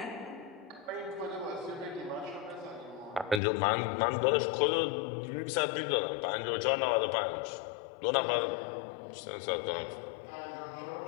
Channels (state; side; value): drops out; right; at 3.4 s